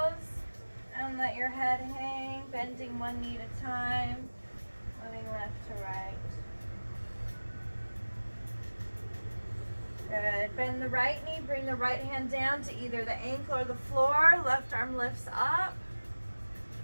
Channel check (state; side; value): inverted; both; correlation -1.00